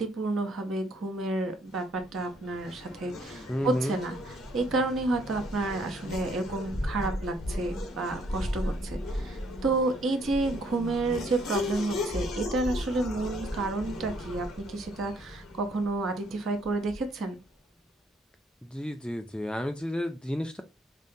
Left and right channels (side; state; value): both; normal; correlation 0.67